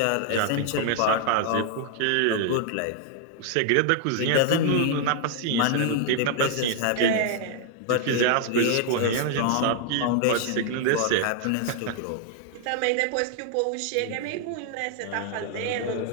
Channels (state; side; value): different; both; correlation 0.00